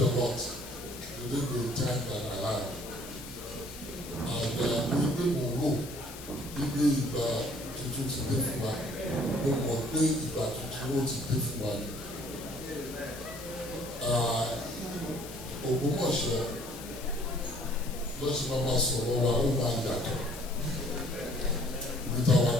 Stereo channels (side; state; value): left; noise; hiss, 13 dB below the sound